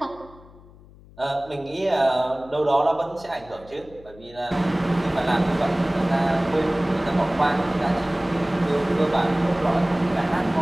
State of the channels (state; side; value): noise; left; hum, 23 dB below the sound